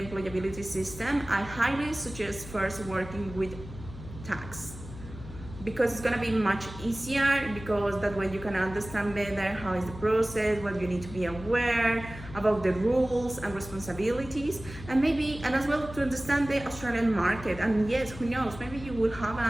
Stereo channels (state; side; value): noise; left; hum, 14 dB below the sound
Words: system, I highly suggest first working with tax, because it's gonna be much easier, because that way you can understand better how is the process, what you need to be aware about the rules and responsibilities, and as well to understand the Australian market. And yes, who knows, maybe you will have